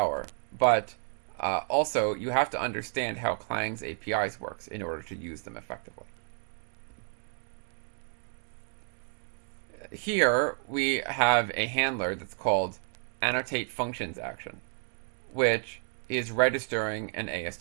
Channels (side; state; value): left; silent; 57 dB below the other